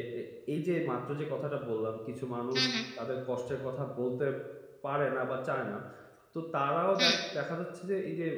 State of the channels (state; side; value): identical; both; correlation 1.00